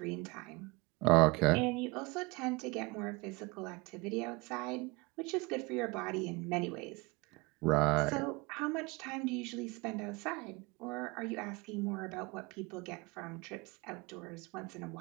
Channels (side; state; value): left; quieter; 25.1 dB